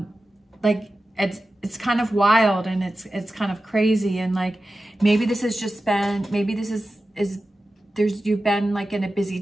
it's kind of wild and it's kind of crazy, and like maybe this has just been, maybe this is you've been like in a busy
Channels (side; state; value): both; normal; correlation 0.94